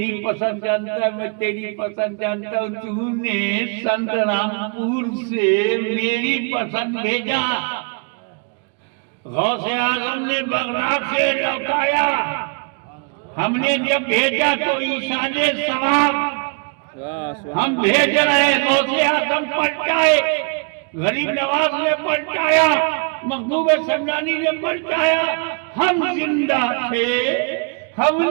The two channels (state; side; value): quieter; left; 37.6 dB